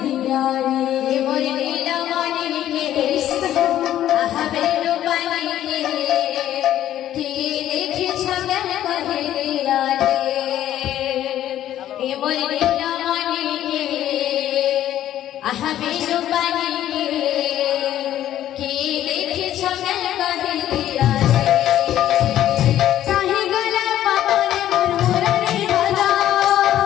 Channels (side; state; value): right; quieter; 12.1 dB